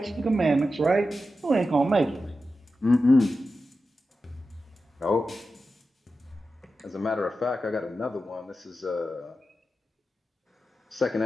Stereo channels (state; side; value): normal; both; correlation 0.91